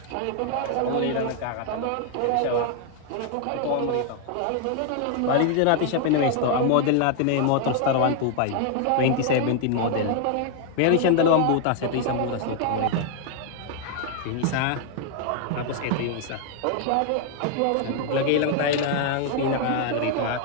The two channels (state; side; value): different; both; correlation 0.00